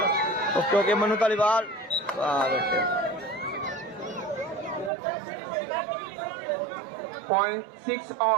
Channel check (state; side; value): drops out; left; at 4.9 s